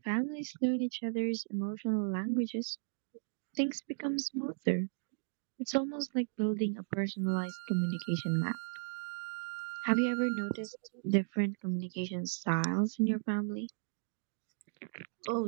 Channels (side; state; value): left; silent; digital silence